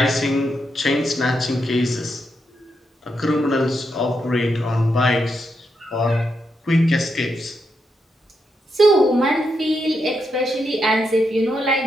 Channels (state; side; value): normal; both; correlation 0.83